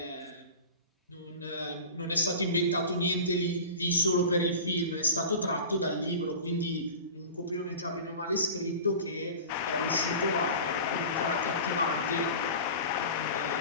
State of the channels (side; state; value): both; inverted; correlation -0.34